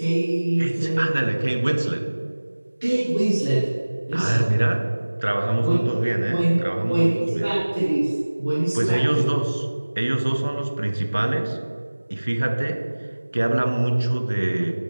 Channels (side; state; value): both; inverted; correlation -1.00